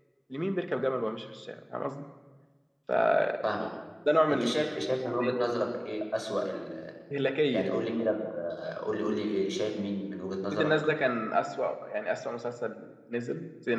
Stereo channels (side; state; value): both; identical; correlation 1.00